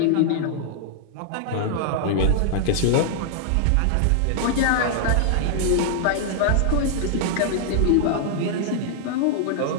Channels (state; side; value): different; both; correlation -0.01